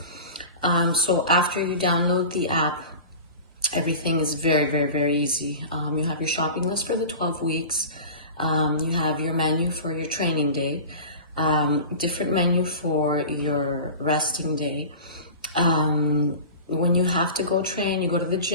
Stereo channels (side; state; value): both; inverted; correlation -0.35